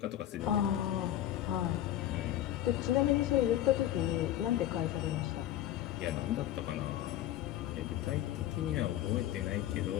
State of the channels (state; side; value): quieter; right; 12.5 dB